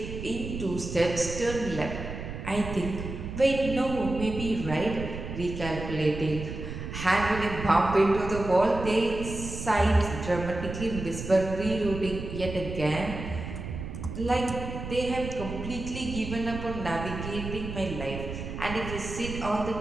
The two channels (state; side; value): noise; right; rumble, 8 dB below the sound